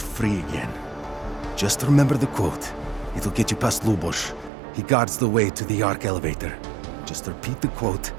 free again. Just remember the quote. It'll get you past Lubosh. He guards the way to the Ark elevator. Just repeat the quote,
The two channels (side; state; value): left; drops out; at 4.5 s